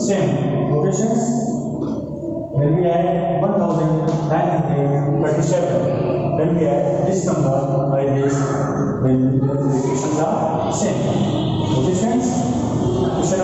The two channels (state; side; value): identical; both; correlation 1.00